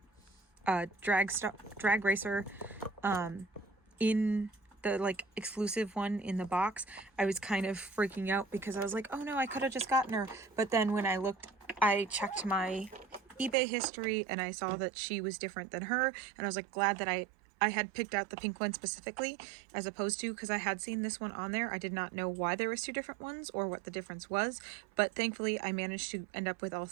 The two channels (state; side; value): drops out; left; at 13.6 s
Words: drag racer in the like exclusive one in the box, I was kind of freaking out because I was like, oh no, I could have just gotten her. But then when I checked my eBay history and I saw that she was different than her, and I was like glad that I I had picked out the pink one specifically, as opposed to, because I had seen this one on there. I did not know why there was two different ones or what the difference was, but thankfully I managed to end up with all